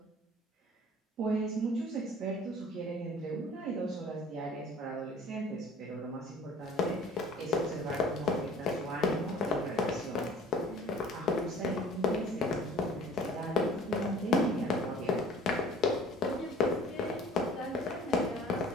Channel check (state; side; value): normal; both; correlation 0.50